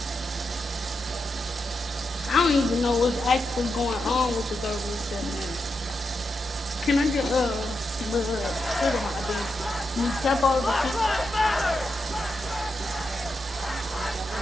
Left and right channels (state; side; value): normal; both; correlation 0.86